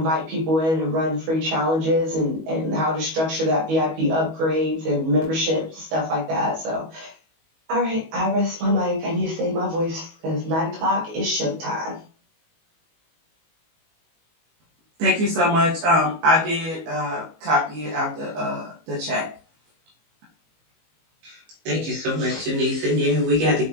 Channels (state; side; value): late; left; 19 ms